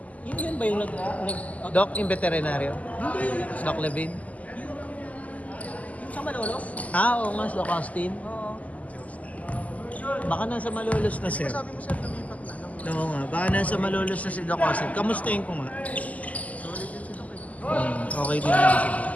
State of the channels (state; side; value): late; right; 0.073 ms